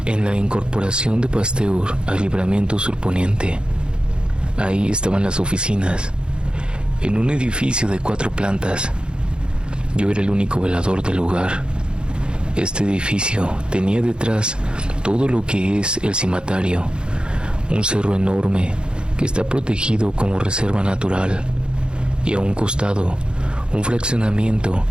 en la incorporación de Pasteur al Libramiento Sur Poniente. Ahí estaban las oficinas, en un edificio de 4 plantas. Yo era el único velador del lugar. Este edificio tenía detrás todo lo que es el Cimatario, un cerro enorme que está protegido como reserva natural, y a un costado un fraccionamiento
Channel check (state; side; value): late; left; 0.051 ms